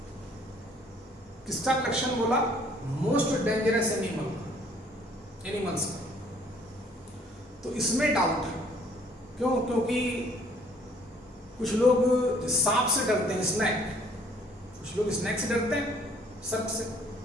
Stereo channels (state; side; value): normal; both; correlation 0.59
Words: किसका कलेक्शन बोला? मोस्ट डेंजरस एनिमल्स का। तो इसमें डाउट है, क्यों? क्योंकि कुछ लोग सांप से डरते हैं, स्नैक, कुछ लोग स्नैक से डरते हैं, सर्प से,